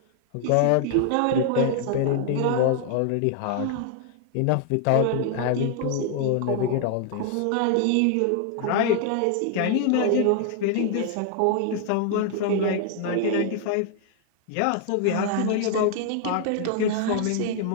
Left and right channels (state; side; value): different; both; correlation 0.00